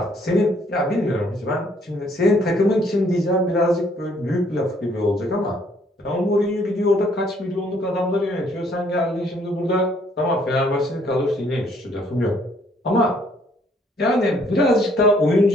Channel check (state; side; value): normal; both; correlation 0.65